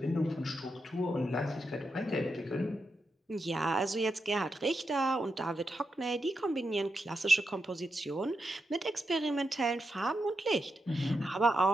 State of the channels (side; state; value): both; normal; correlation 0.86